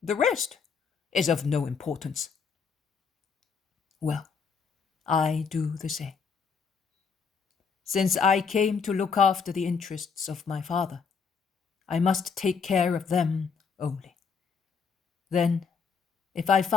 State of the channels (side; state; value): right; quieter; 5.7 dB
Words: The rest is of no importance." "Well, I do the same. Since I came to look after the interests of my Father, I must take care of them only. Then, if I